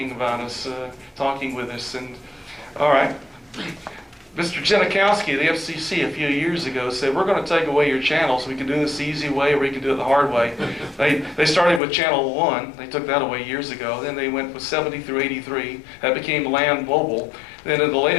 about us, talking with us. And all right, Mr. Janikowski, the FCC, a few years ago said, we're going to take away your channels. We can do this the easy way or we can do it the hard way. They started with Channel 1. They took that away years ago. Then they went with 70 through 83. That became Land Mobile. Then in the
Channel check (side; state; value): right; drops out; at 11.8 s